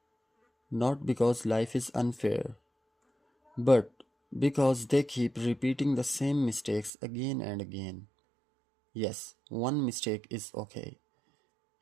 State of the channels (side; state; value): left; drops out; at 6.9 s